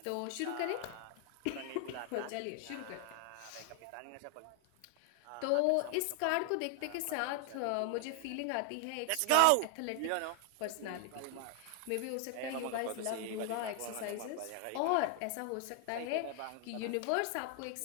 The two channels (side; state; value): both; different; correlation 0.00